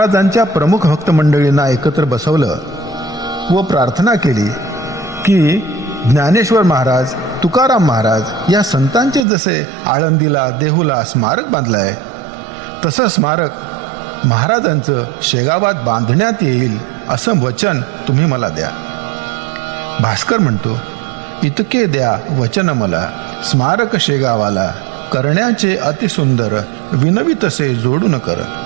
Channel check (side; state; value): left; drops out; at 9.2 s